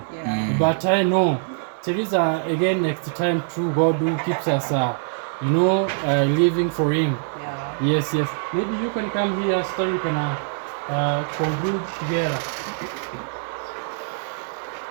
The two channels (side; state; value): left; silent; 63 dB below the other